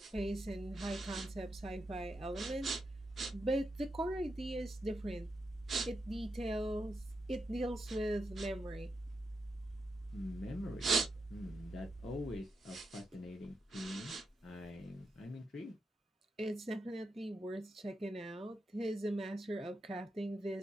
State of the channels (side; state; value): both; normal; correlation 0.85